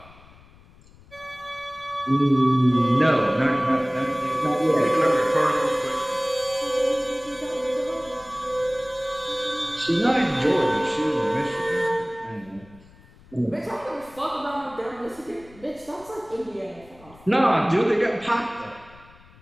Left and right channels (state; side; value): noise; left; rumble, 24 dB below the sound